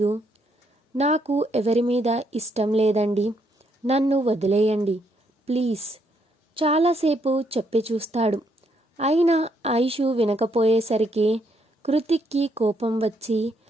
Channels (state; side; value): normal; both; correlation 0.74